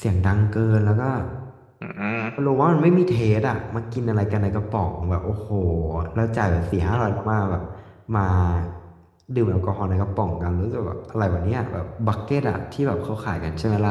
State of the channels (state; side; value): identical; both; correlation 1.00